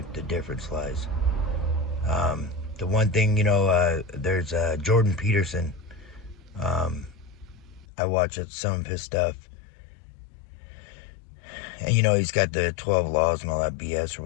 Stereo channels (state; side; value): drops out; right; at 7.9 s